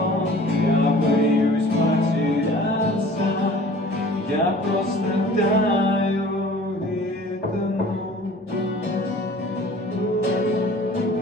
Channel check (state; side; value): normal; both; correlation 0.47